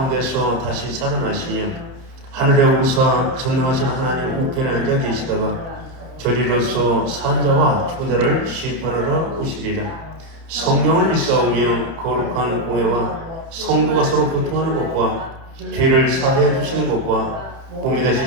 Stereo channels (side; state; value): left; late; 30 ms